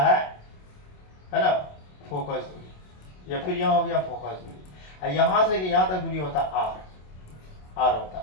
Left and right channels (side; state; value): right; late; 27 ms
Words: है ना, फोकस दूरी, या फिर यहाँ हो गया फोकस दूरी। यहाँ से यहाँ तक दूरी होता है आर होता।